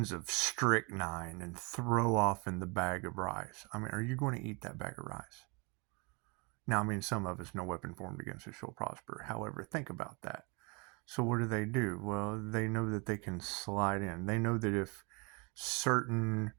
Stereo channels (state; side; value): quieter; left; 30.4 dB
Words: of strychnine and throw off in the bag of rice. I mean, are you going to eat that bag of rice? Now, I mean, some of us, no weapon formed against us shall prosper. However, think about that. So what do? Well, they know that they can slide in. They know that if certain